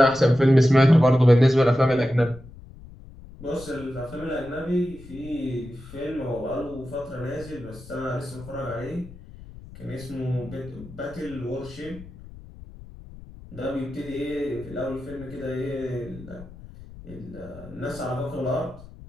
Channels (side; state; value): left; noise; rumble, 17 dB below the sound